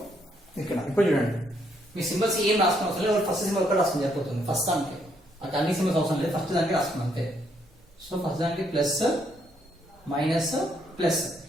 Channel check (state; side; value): normal; both; correlation 0.72